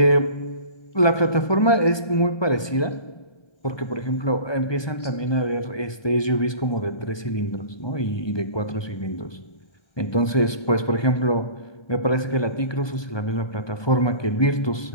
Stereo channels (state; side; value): late; right; 1.2 ms